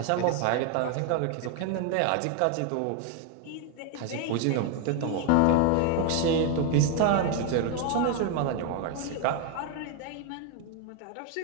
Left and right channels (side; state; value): both; different; correlation 0.01